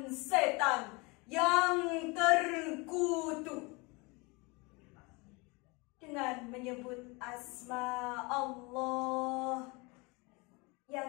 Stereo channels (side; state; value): right; quieter; 27.2 dB